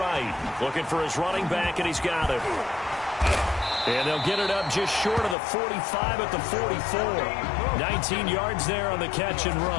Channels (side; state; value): right; drops out; at 5.4 s